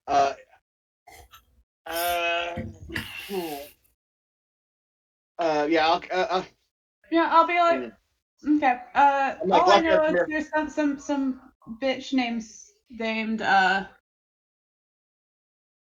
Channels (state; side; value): identical; both; correlation 1.00